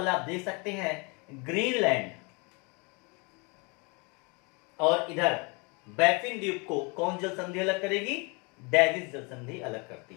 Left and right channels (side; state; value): right; quieter; 30.4 dB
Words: आप देख सकते हैं, ग्रीनलैंड और इधर बैफिन द्वीप को कौन जल संधि अलग करेगी? डेविस जल संधि अलग